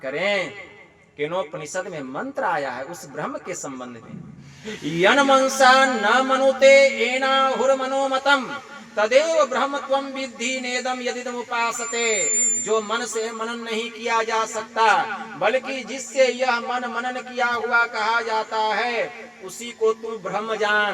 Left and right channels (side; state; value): both; identical; correlation 1.00